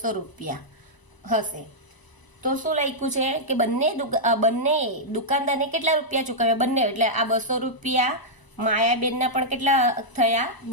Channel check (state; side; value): late; right; 1.0 ms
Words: રૂપિયા હશે. તો શું લખ્યું છે કે બંને દુકાનદારને કેટલા રૂપિયા ચૂકવ્યા? બંને એટલે આ 200 રૂપિયા માયાબેનના પણ કેટલા થયા?